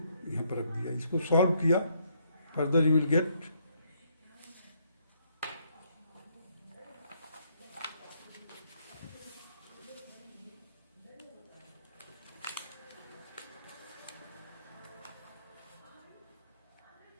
यहाँ पर रख दिया. इसको सॉल्व किया, फर्दर यू विल गेट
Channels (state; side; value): inverted; both; correlation -0.71